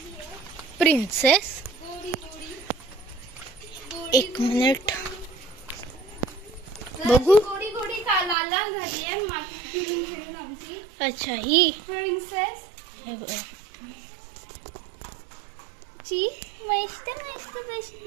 प्रिन्सेस एक मिनिट बघू. गोडी गोडी का लाल लाल झाली आहे माती फिरून फिरून आमची अच्छा ही प्रिन्सेस हे बघा. ची मस्त मस्त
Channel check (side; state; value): left; drops out; at 8.3 s